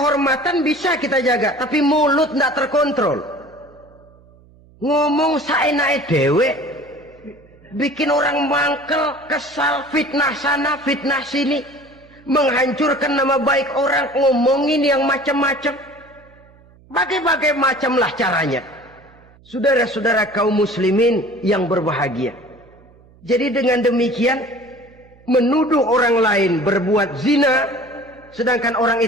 bisa kita jaga, tapi mulut tidak terkontrol. Ngomong saenake dhewe, bikin orang mangkel, kesal, fitnah sana, fitnah sini, menghancurkan nama baik orang, ngomongin yang macam-macam. Bagai-bagai macamlah caranya. Saudara-saudara kaum muslimin yang berbahagia. Jadi dengan demikian, menuduh orang lain berbuat zina, sedangkan orang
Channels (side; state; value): right; noise; hum, 27 dB below the sound